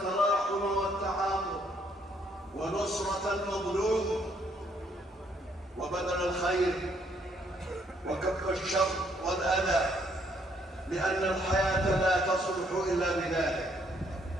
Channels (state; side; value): normal; both; correlation 0.69